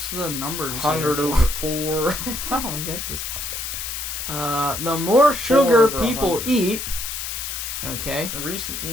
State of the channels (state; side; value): noise; left; hiss, 5 dB below the sound